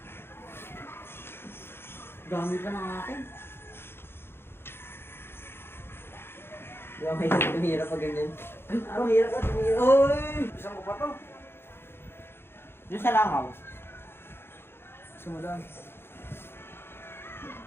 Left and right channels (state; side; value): late; right; 0.11 ms